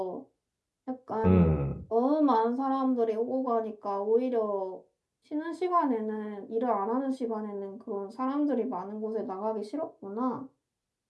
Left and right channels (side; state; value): both; identical; correlation 1.00